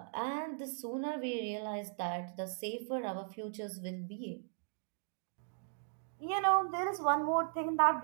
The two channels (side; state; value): left; silent; digital silence